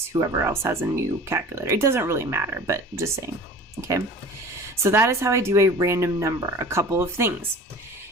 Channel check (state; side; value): normal; both; correlation 0.41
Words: whoever else has a new calculator. It doesn't really matter, but just saying. Okay. So that is how I do a random number. A couple of things.